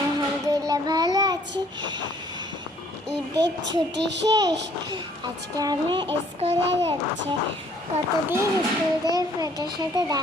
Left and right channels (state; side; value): normal; both; correlation 0.61